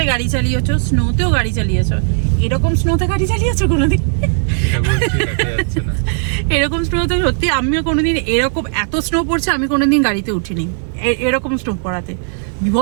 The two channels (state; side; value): silent; left; 69 dB below the other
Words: গাড়ি চালিয়েছো, স্নোতেও গাড়ি চালিয়েছো। এরকম স্নোতে গাড়ি চালিয়েছো কোনোদিন? এরকম স্নোতে সত্যি আমিও কোনোদিন, এরকম এত স্নো পড়ছে আমি কোনোদিন গাড়িতে উঠিনি এরকম স্নো পড়াতে।